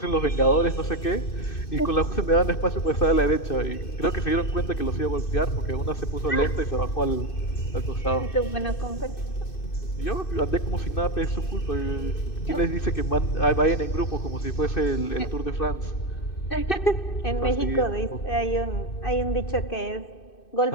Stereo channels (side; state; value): right; late; 2.6 ms